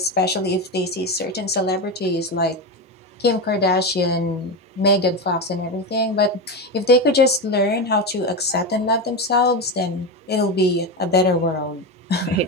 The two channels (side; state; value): both; normal; correlation 0.16